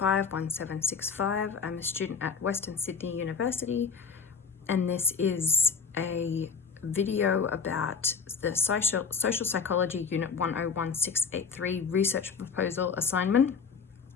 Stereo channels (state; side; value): quieter; right; 5.6 dB